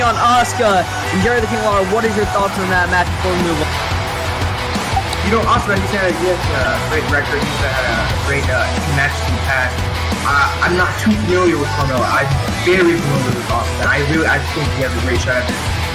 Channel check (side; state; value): both; identical; correlation 1.00